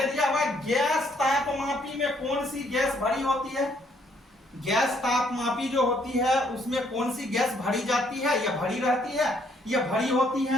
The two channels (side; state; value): both; normal; correlation 0.68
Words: दिया हुआ गैस तापमापी में कौन सी गैस भरी होती है? गैस तापमापी जो होती है उसमें कौन सी गैस भरी जाती है या भरी रहती है या भरी होती